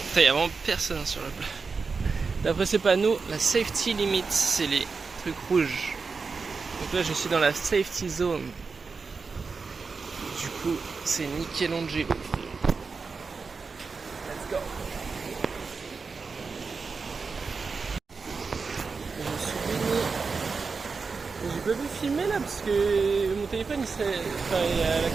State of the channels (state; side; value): quieter; left; 4.7 dB